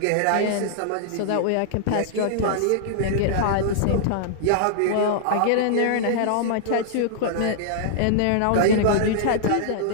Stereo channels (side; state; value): both; different; correlation -0.01